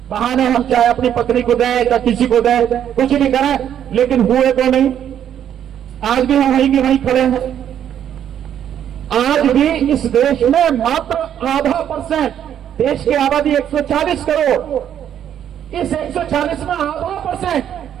बहाने हम चाहे अपनी पत्नी को दें या किसी को दें, कुछ भी करें, लेकिन हुए तो नहीं। आज भी हम वहीं के वहीं खड़े हैं। आज भी इस देश में मात्र आधा %, देश की आबादी 140 करोड़, इस 140 में आधा %,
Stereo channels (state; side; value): quieter; left; 9.8 dB